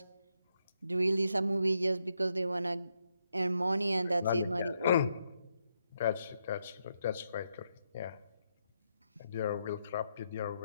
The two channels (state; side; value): inverted; both; correlation -0.81